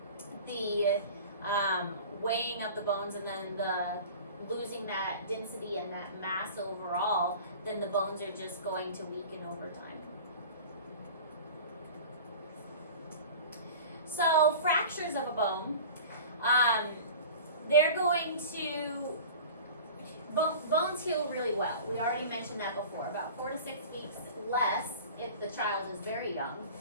weighing of the bones and then the losing that density and that mass overall, then the bones are just going to weaken over time. So fractures of a bone, they're going to, bones heal really well. We already mentioned that before, about 4 to 6 weeks less if the child is very young.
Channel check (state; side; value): inverted; both; correlation -0.38